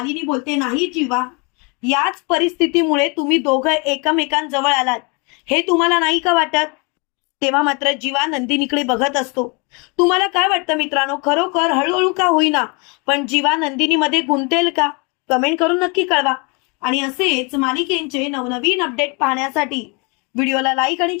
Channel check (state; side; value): quieter; right; 31.4 dB